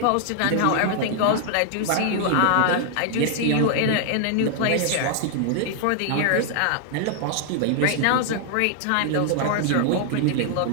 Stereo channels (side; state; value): both; different; correlation 0.00